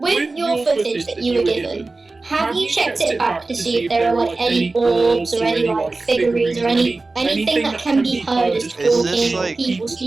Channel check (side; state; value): left; quieter; 3.5 dB